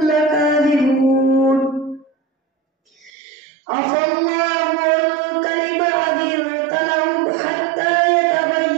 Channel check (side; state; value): left; drops out; at 3.1 s